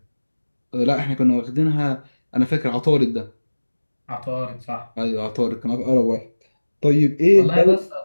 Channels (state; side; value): inverted; both; correlation -1.00